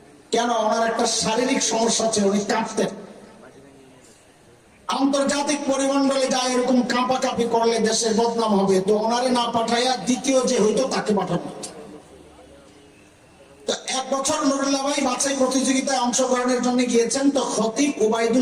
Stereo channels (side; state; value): both; identical; correlation 1.00